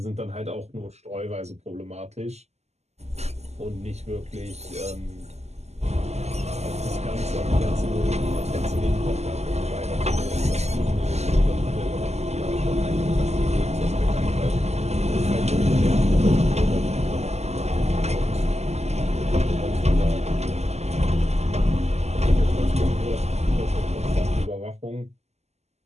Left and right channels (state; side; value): late; left; 0.32 ms